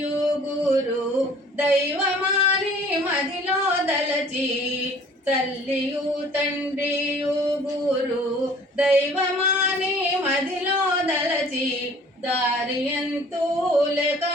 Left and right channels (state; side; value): normal; both; correlation 0.51